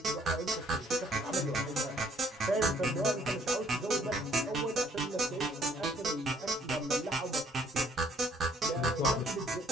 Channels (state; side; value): normal; both; correlation 0.62